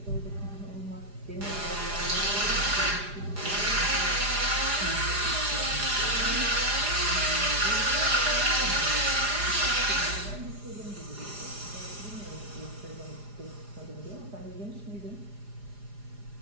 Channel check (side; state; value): left; late; 4.9 ms